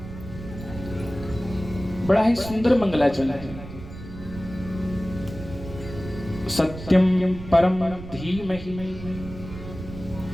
बड़ा ही सुंदर मंगलाचरण है। सत्यम परम धीमहि,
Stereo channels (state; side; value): noise; right; rumble, 12 dB below the sound